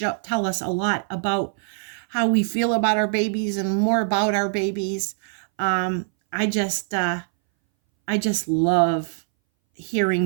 tell us a lot about how we feel about our babies and more about our babies. Um, I just I just love hearing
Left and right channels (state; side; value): silent; left; 61 dB below the other